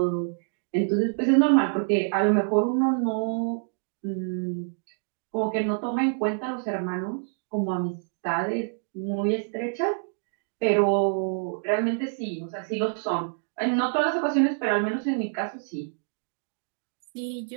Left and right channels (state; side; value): silent; left; digital silence